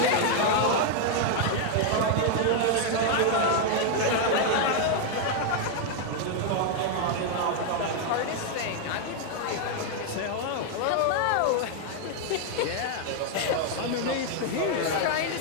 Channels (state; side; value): different; both; correlation 0.00